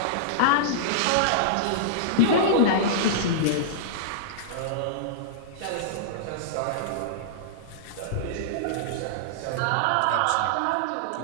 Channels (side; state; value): both; different; correlation -0.02